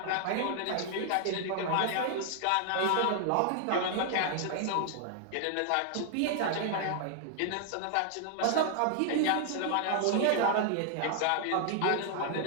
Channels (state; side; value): different; both; correlation 0.00